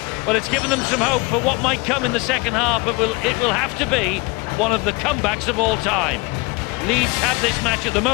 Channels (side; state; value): right; quieter; 26.3 dB